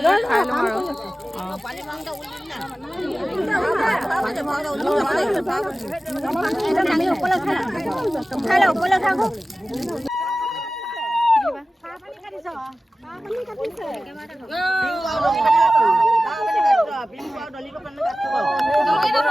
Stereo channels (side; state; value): both; normal; correlation 0.96